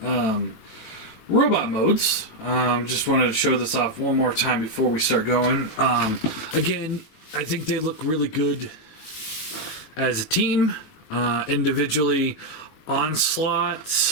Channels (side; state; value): right; late; 19 ms